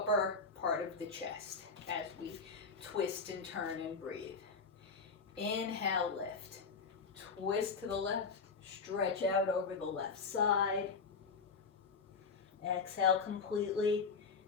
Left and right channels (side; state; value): right; quieter; 4.9 dB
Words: part of the chest as we twist and turn and breathe. Inhale, lift. Twist to the left. Stretch out over the left side. Exhale completely.